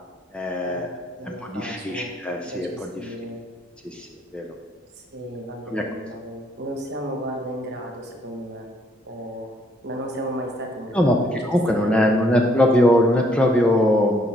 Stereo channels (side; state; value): both; normal; correlation 0.68